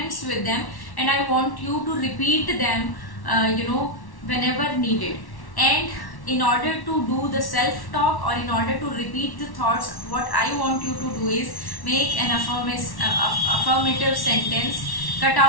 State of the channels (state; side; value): late; right; 1.1 ms